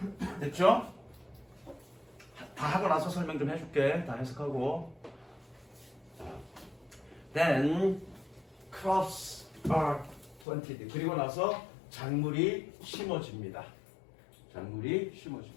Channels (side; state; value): right; drops out; at 10.5 s